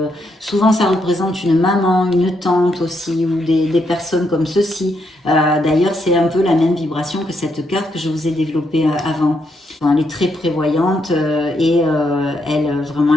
Souvent, ça représente une maman, une tante aussi, ou des personnes comme ceci. D'ailleurs, c'est un peu la même vibration que cette carte que je vous ai développée avant. Elle est très prévoyante et elle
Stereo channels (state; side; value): normal; both; correlation 0.78